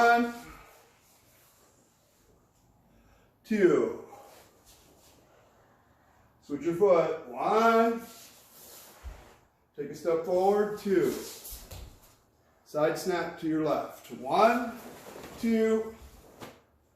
2. Switch your foot. 1. Take a step forward. 2. Side snap to your left. 1, 2.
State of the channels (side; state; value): both; identical; correlation 1.00